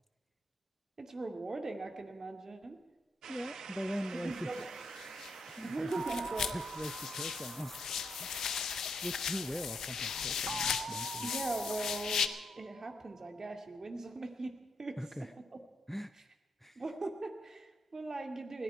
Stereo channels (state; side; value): normal; both; correlation 0.79